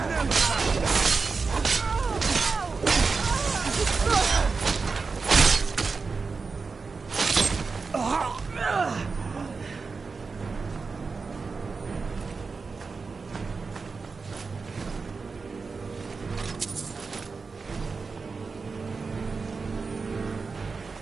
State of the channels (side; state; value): left; quieter; 4.6 dB